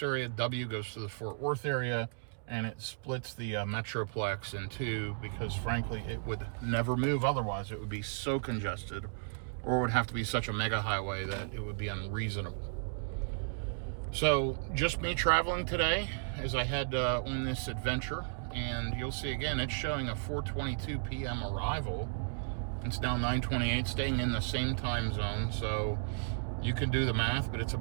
area, W goes to the Fort Worth area, and it splits the Metroplex in two because, frankly, it would never move otherwise. It would be so congested, or it would have to be such a mega highway that it would be unreasonable. So just me traveling today as I head on this adventure, and you'll see again it's showing a 4:22 p.m. arrival. It's now 9:28, staying in the same time zone, so you can do the math, but it's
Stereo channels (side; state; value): left; silent; digital silence